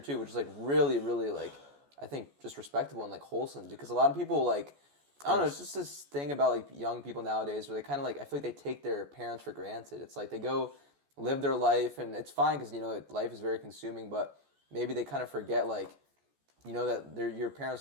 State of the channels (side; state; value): left; late; 14 ms